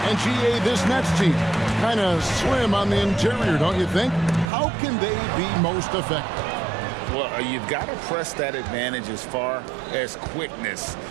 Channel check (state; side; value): drops out; left; at 4.5 s